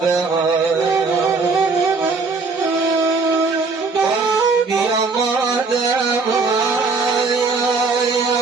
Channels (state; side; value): quieter; left; 4.2 dB